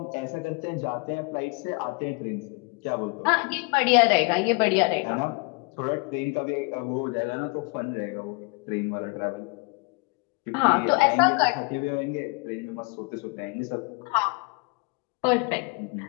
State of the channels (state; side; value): quieter; right; 29.2 dB